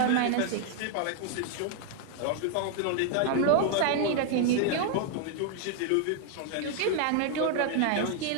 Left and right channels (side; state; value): both; different; correlation 0.00